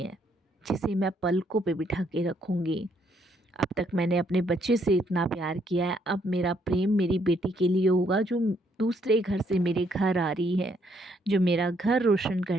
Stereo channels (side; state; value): both; normal; correlation 0.71